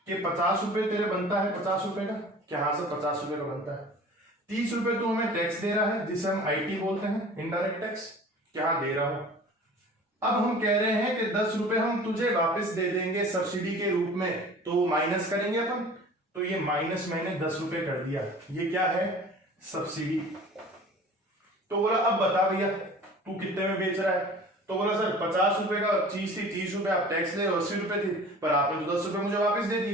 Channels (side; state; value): both; normal; correlation 0.43